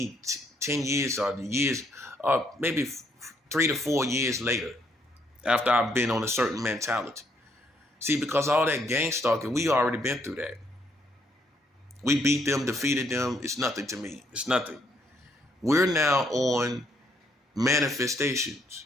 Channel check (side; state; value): both; normal; correlation 0.71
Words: 10 years or maybe 3 to 4 years later, after I've been on a certain mentality. See, because all that gang stalking, we already been through that. We beat them, defeated them. It's nothing to me. It's nothing. We're now on manifestations.